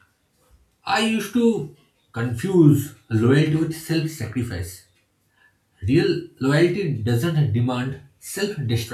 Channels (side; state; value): both; identical; correlation 1.00